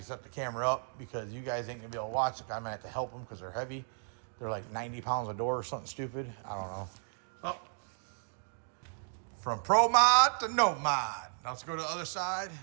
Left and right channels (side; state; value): left; silent; digital silence